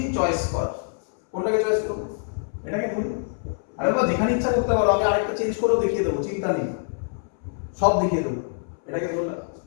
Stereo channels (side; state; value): right; silent; 62 dB below the other